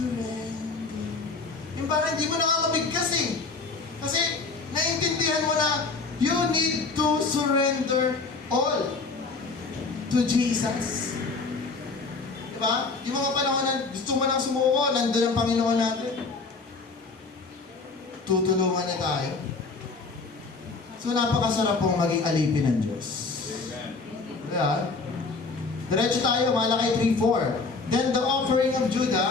Yung parang hindi mo nakakabigkas eh. Kasi naiintindihan mo na you need to surrender all to Jesus. Di ba? Yung mga panahon na gusto mo nang sumuko, nandun ang Panginoon natin. Tutulungan na tayo. So napakasarap pong maging alipin ng Diyos. Amen. Diba? Diretso tayo, Malakay 3:4. Then the offering of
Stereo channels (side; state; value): right; quieter; 4.1 dB